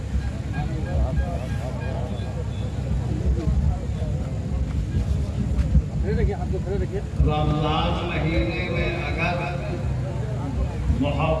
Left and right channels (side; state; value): both; identical; correlation 1.00